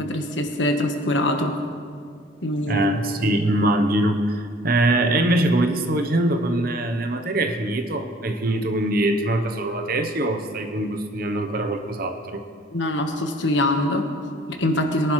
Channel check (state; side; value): normal; both; correlation 0.54